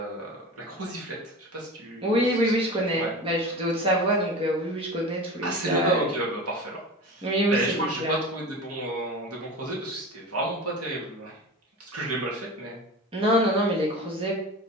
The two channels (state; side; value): normal; both; correlation 0.32